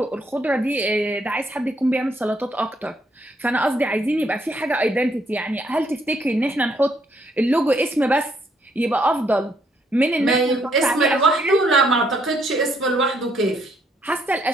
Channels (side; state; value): both; normal; correlation 0.71